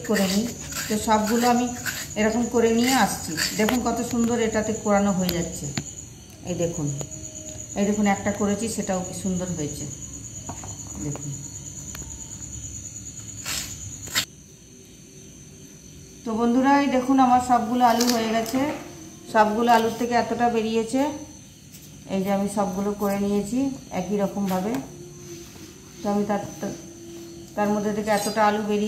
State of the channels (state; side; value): identical; both; correlation 1.00